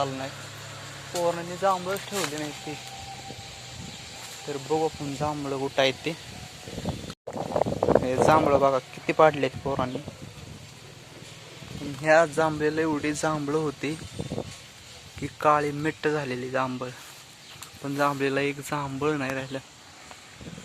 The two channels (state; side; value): identical; both; correlation 1.00